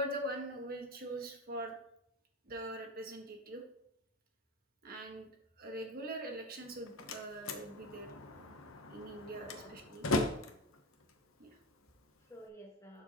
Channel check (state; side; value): normal; both; correlation 0.22